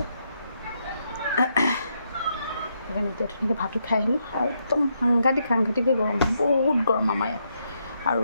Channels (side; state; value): both; inverted; correlation -0.79